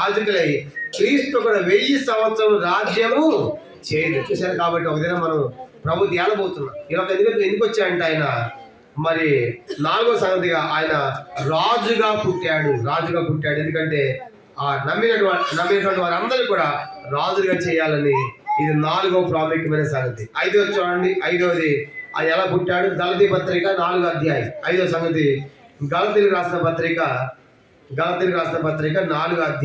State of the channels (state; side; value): identical; both; correlation 1.00